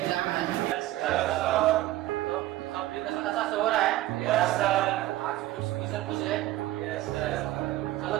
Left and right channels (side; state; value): left; quieter; 15.8 dB